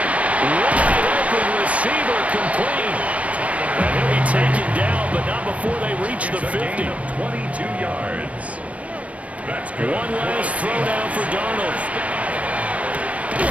Wide open receiver complete. And he'll be taken down, but not before they reach the 50. 22 yards. That's good. One last throw down for Darnold.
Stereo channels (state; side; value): late; left; 0.065 ms